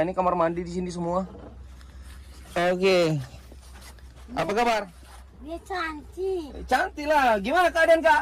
Ini kamar mandi di sini semua. Oke. Apa kabar? Dia cantik. Cantik lah. Gimana keadaan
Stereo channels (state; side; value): identical; both; correlation 1.00